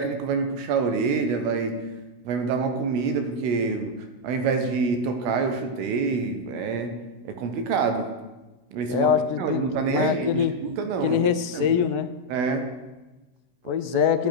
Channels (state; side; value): late; left; 16 ms